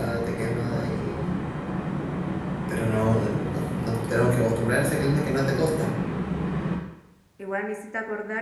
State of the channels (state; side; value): identical; both; correlation 1.00